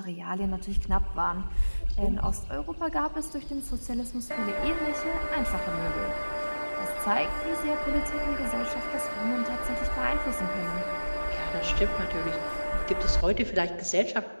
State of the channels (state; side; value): inverted; both; correlation -1.00